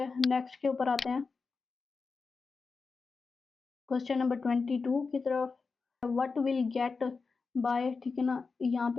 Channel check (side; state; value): right; quieter; 4.6 dB